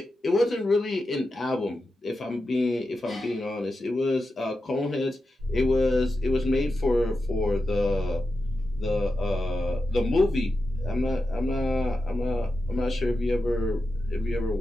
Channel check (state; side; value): normal; both; correlation 0.90